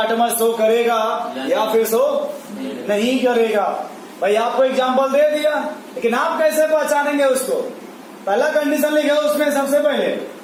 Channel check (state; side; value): identical; both; correlation 1.00